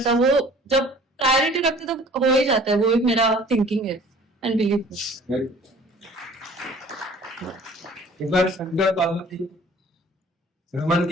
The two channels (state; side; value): normal; both; correlation 0.50